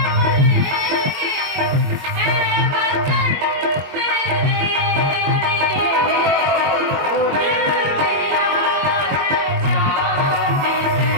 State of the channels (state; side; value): late; left; 21 ms